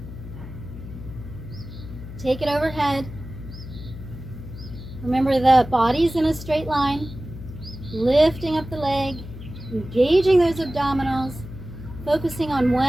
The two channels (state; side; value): noise; left; hum, 12 dB below the sound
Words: Take it overhead. Remember, the body's in a straight line. Lifting up the leg, engaging those abdominals, focusing on